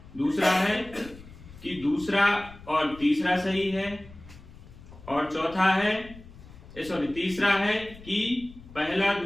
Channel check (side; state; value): left; noise; rumble, 19 dB below the sound